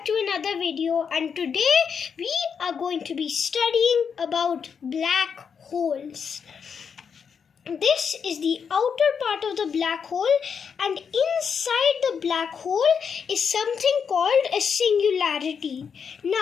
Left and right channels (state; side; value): quieter; right; 6.6 dB